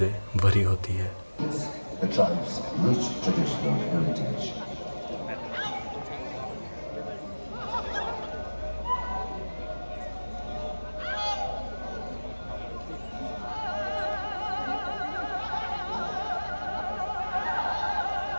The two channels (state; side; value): inverted; both; correlation -1.00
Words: भरी होती है। The tribe's rich traditional heritage.